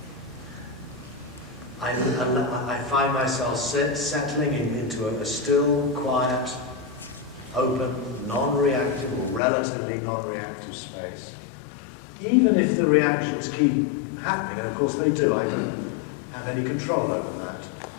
I find myself settling into a still, quiet, open, non-reactive or relatively non-reactive space. Even if the reactions keep happening, and of course they do, I don't have any control over that.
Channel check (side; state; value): right; drops out; at 9.4 s